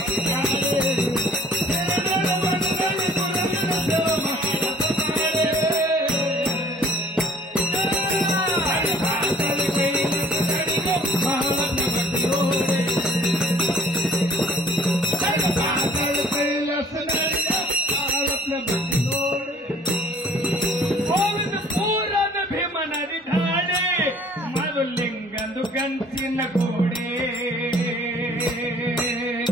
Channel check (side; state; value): both; normal; correlation 0.53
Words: ಪೂರದ ಭೀಮನದಿ ಧಾಡೆ ಮರುಲಿಂಗಂದು ಗಂಚಿನ ಗೋಡೆ